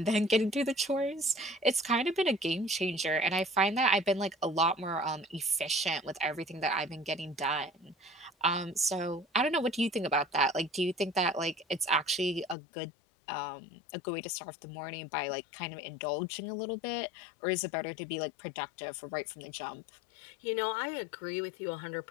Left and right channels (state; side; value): drops out; right; at 12.6 s